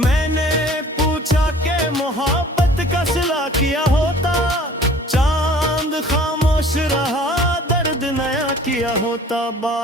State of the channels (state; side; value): normal; both; correlation 0.49